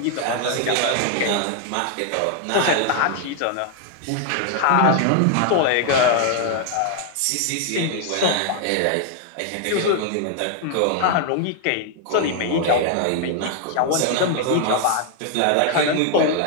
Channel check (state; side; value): different; both; correlation 0.00